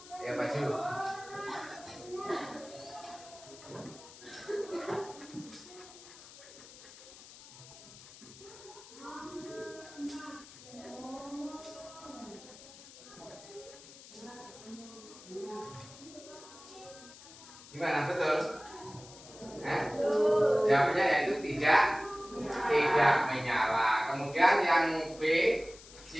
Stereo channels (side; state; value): left; noise; hiss, 18 dB below the sound